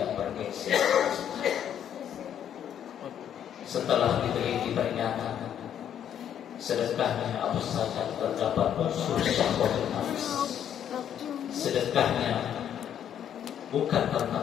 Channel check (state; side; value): quieter; right; 9.6 dB